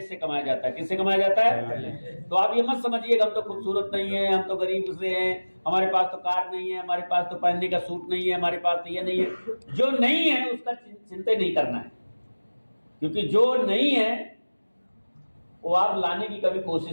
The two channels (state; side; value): inverted; both; correlation -1.00